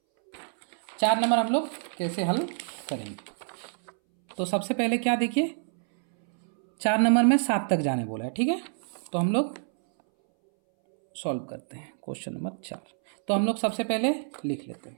4 नंबर हम लोग कैसे हल करेंगे। तो सबसे पहले क्या देखिए, 4 नंबर में 7 तक जाने बोला है, ठीक है। तो हम लोग सॉल्व करते हैं क्वेश्चन नंबर 4। तो हम लोग सबसे पहले लिख लेते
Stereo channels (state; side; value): silent; left; 60 dB below the other